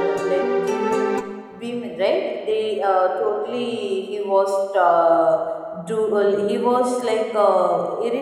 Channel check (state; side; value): identical; both; correlation 1.00